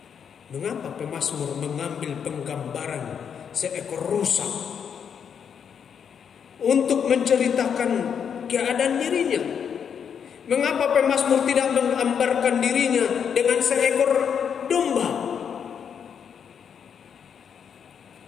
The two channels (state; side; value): quieter; right; 7.5 dB